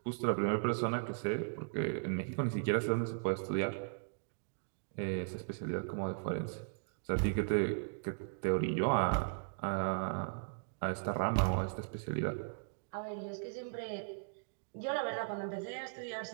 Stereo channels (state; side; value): silent; left; digital silence